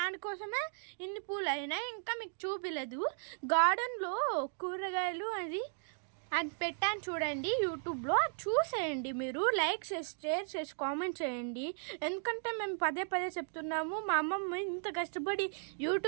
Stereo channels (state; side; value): silent; left; digital silence